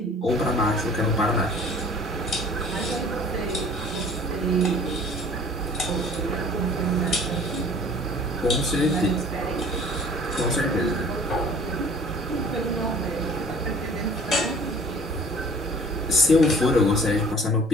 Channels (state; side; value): normal; both; correlation 0.49